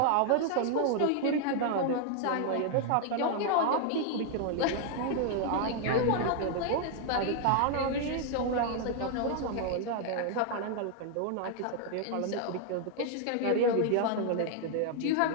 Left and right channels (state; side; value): different; both; correlation 0.00